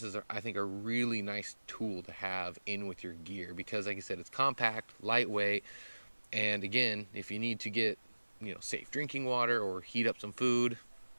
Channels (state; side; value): inverted; both; correlation -1.00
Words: is I think a really nice tool to have in with your gear, because like I said, it's compact, lightweight, and again, if you need to get safe drinking water or heat up some food,